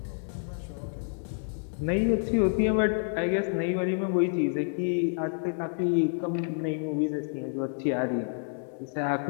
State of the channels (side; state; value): right; silent; digital silence